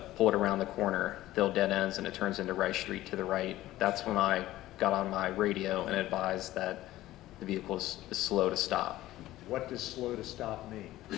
pulled around the corner. Thill dead ends, and it turns into Rice Street to the right. That's when I got on my radio and advised that the vehicle is slow to stop. What does slow to stop mean?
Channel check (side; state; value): right; quieter; 15.6 dB